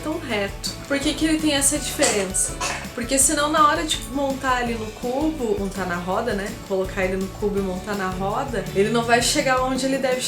reto. Por que que ele tem essa diferença? Porque senão na hora de montar ali no cubo, montar na roda, né? Colocar ele no cubo e montar na roda, ele não vai chegar onde ele deve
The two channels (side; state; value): both; identical; correlation 1.00